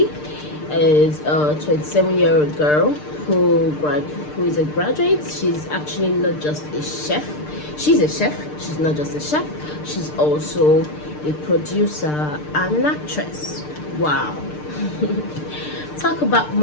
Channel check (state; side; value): late; right; 6.7 ms